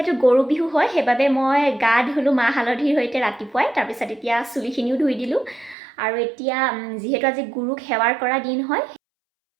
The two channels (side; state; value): left; drops out; at 5.8 s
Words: গৰু বিহু হয়, সেইবাবে মই গা ধুলোঁ মাহ হালধিৰ সৈতে ৰাতিপুৱাই। তাৰপিছত এতিয়া চুলিখিনিও ধুই দিলোঁ। আৰু এতিয়া যিহেতু আজি গুৰুক সেৱাৰ কৰা দিন হয়,